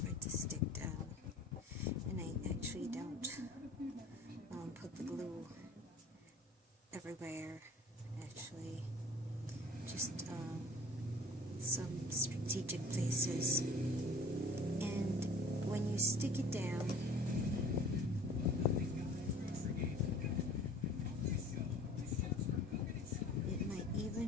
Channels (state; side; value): normal; both; correlation 0.46